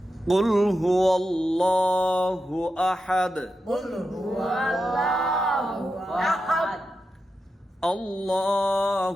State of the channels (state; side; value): normal; both; correlation 0.89